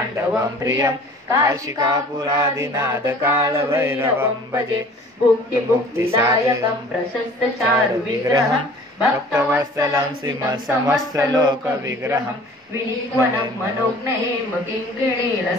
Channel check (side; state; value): both; normal; correlation 0.48